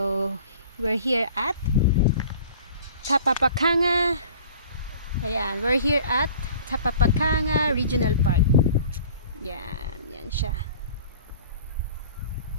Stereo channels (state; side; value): inverted; both; correlation -0.46